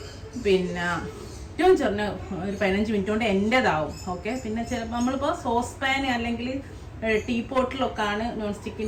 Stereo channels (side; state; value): both; identical; correlation 1.00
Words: പിന്നെ ഏറ്റവും ചെറിയ ഒരു 15 മിനിറ്റ് കൊണ്ട് എൻ്റെതാവും. ഓക്കെ, പിന്നെ ചിലപ്പോൾ നമ്മളിപ്പോൾ സോസ് പാൻ അല്ലെങ്കിൽ ടീ പോട്ടിലൊക്കെ ആണ് നോൺ